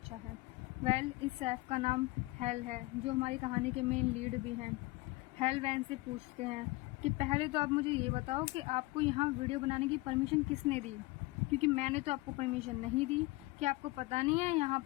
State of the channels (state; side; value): quieter; right; 21.7 dB